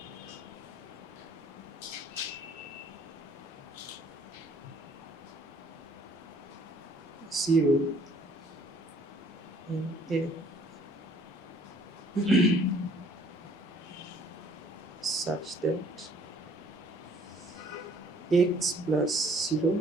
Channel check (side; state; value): both; normal; correlation 0.59